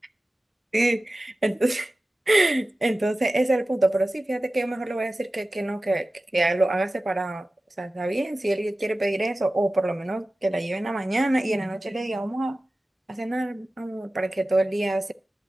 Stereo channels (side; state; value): both; normal; correlation 0.96